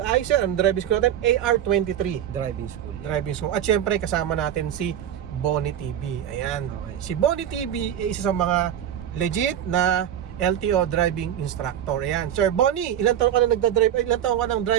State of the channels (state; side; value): quieter; left; 10.3 dB